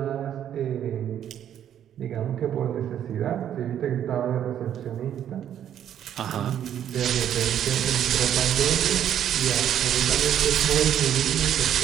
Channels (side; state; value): left; quieter; 10.1 dB